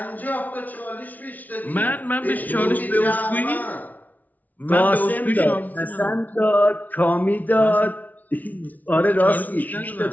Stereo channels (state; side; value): late; right; 0.076 ms